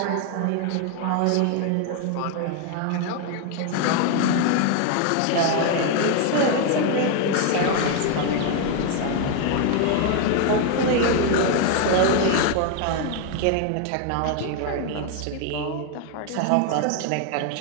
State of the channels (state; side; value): different; both; correlation 0.01